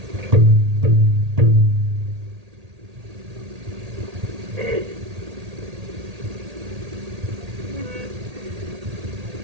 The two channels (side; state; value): left; late; 1.8 ms